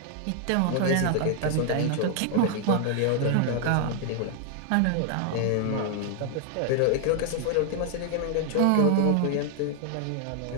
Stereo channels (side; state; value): both; different; correlation 0.00